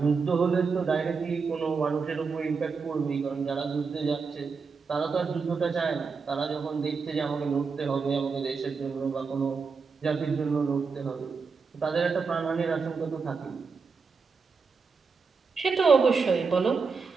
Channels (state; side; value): quieter; left; 5.0 dB